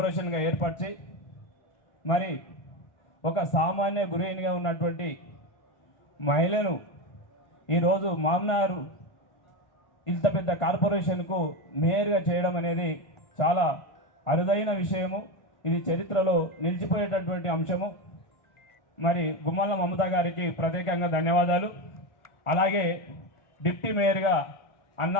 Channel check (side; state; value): right; late; 1.4 ms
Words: ఏర్పరిచి మరి ఒక సామాన్య గృహిణిగా ఉన్నటువంటి మహిళను ఈరోజు మహబూబ్నగర్ ఇంత పెద్ద కార్పొరేషన్కు మేయర్గా చేయడం అనేది చాలా అరుదైన విషయము. ఇది చరిత్రలో నిలిచిపోయేటటువంటి అంశము. మరి గుమ్మల మమత గారికి ప్రత్యేకంగా ధన్యవాదాలు. అలాగే డిప్యూటీ మేయర్గా అన్న